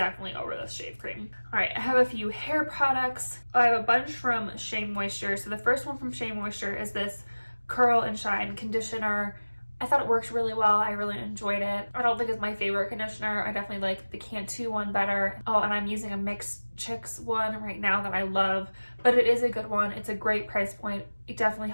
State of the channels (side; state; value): both; inverted; correlation -1.00